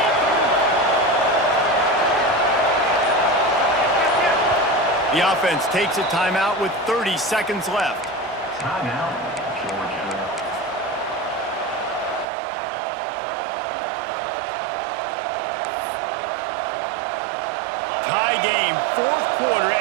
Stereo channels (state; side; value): drops out; left; at 12.2 s